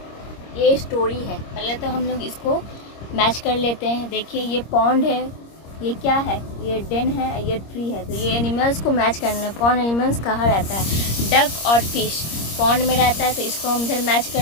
ये story है। पहले तो हम लोग इसको मैच कर लेते हैं। देखिए ये पॉन्ड है, ये क्या है, ये डेन है, ये ट्री है। तो ये एनिमल्स को मैच करना है, कौन एनिमल्स कहाँ रहता है। डक और फिश पॉन्ड में रहता है तो इसको हम इधर मैच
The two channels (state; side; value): late; right; 26 ms